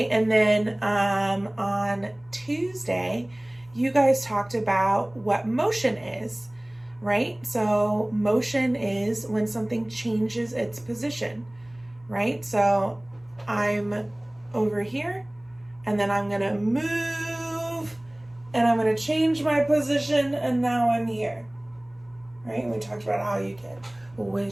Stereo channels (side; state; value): left; noise; hum, 30 dB below the sound